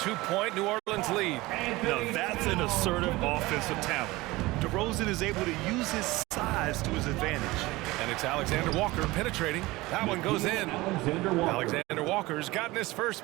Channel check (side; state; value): left; quieter; 20.4 dB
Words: New Orleans lead. Now that's an assertive offensive talent. DeRozan is able to use his size to his advantage. And it's Alexander Walker penetrating. That one goes in. Alexander Walker's gotten his